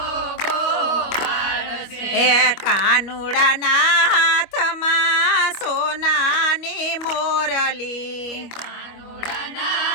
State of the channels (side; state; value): right; late; 25 ms